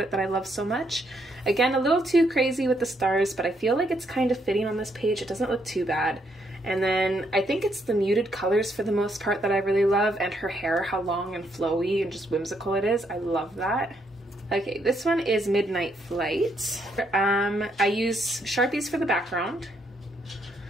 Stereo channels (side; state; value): both; normal; correlation 0.74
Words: it that I love so much. Again, a little too crazy with the stars, but I feel like it's kind of fitting on this page. It doesn't look too bad. And then I think it's the muted colors for the most part that I really love, and her hair, how long and flowy and just whimsical it is. I love that. Okay, this one is Midnight Flight. I use Sharpies for the background.